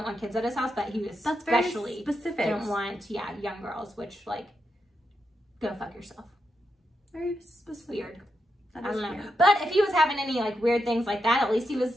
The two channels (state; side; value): normal; both; correlation 0.85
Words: want kids at his house, but he was especially specific. Didn't want young girls, which like go fuck yourself. Very specific. Weird. I don't know. But if he was having any like weird things like that, at least he